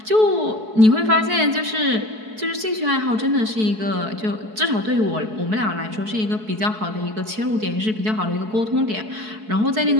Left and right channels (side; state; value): left; late; 4.6 ms